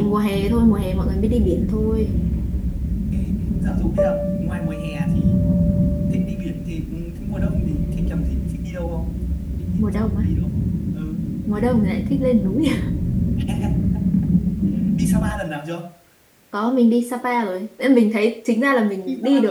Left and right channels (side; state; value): both; identical; correlation 1.00